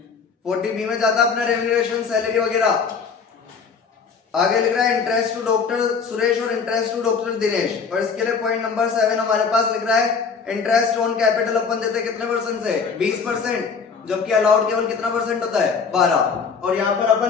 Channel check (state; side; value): quieter; right; 5.5 dB